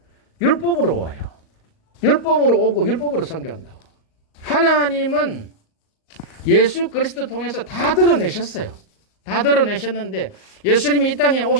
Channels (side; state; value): right; late; 38 ms